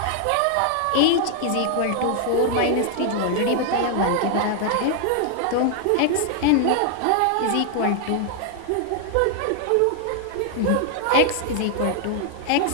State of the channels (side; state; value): both; different; correlation 0.00